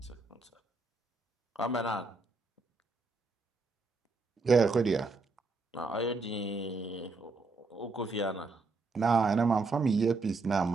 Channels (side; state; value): left; quieter; 3.8 dB